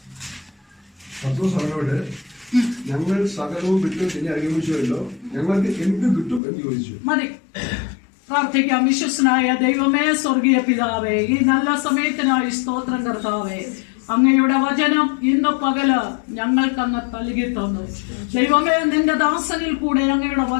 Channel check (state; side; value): drops out; right; at 6.4 s